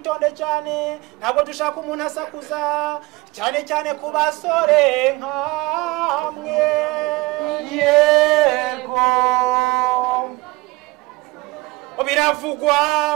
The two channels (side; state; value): left; quieter; 22.4 dB